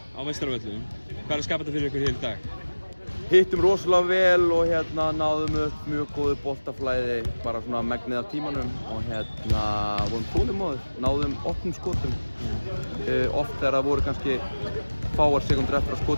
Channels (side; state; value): both; inverted; correlation -1.00